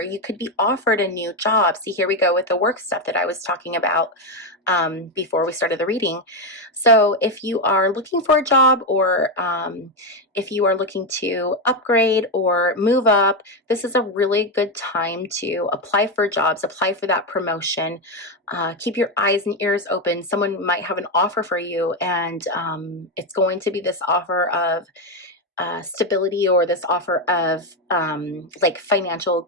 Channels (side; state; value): both; normal; correlation 0.08